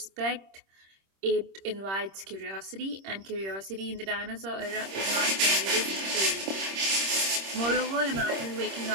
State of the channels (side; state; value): left; late; 26 ms